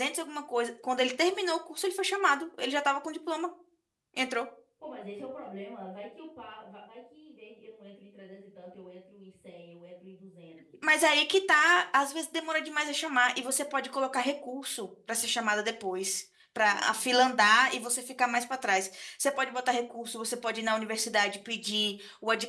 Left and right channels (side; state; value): both; identical; correlation 1.00